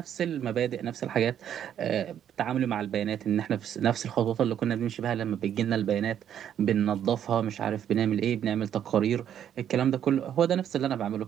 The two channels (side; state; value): left; quieter; 9.7 dB